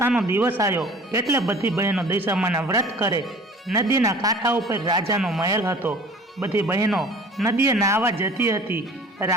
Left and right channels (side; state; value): both; normal; correlation 0.46